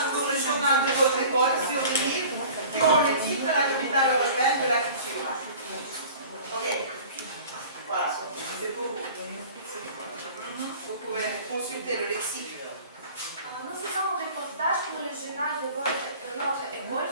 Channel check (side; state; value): both; inverted; correlation -0.44